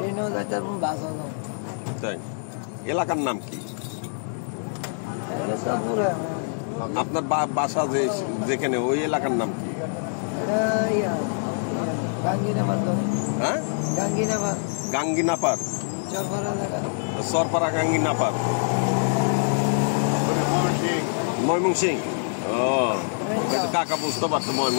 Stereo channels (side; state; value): right; silent; digital silence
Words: যাইতে পারবো বাসও যাবো। তাই এলাকার নাম কি আপনার? বাসা যেখানে ওই এলাকার নাম কি? হ্যাঁ গাঙ্গিনাপার সরপাড়া গাঙ্গিনাপার ময়মনসিং। ও কাকা বুঝতে পারতো